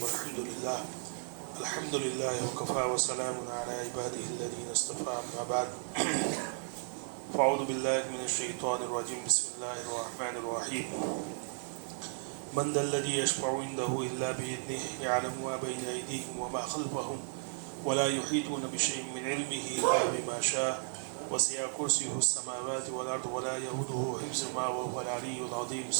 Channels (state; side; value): silent; left; 55 dB below the other